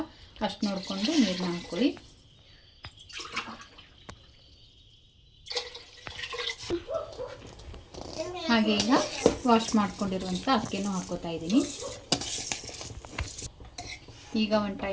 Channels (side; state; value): both; identical; correlation 1.00